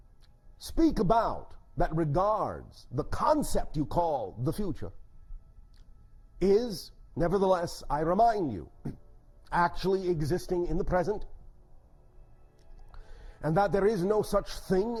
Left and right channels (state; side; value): identical; both; correlation 1.00